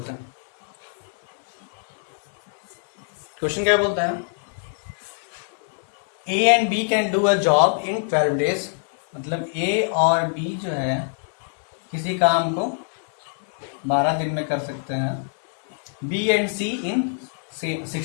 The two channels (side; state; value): right; silent; 63 dB below the other